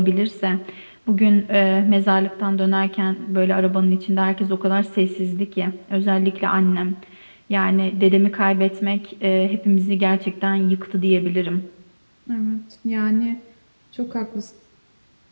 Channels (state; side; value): inverted; both; correlation -1.00